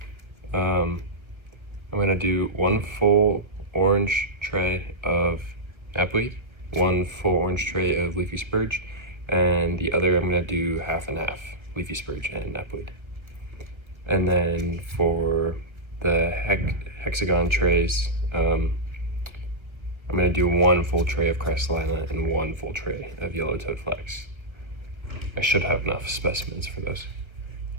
I'm going to do 1 full orange tray of knapweed, 1 full orange tray of leafy spurge, and the other I'm going to do half and half, leafy spurge and knapweed. And then for the hexagon trays, I'm going to do 1 full tray of crystalina and 1 full tray of yellow-toed flax. I should have enough specimens for those.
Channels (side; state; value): left; late; 1.4 ms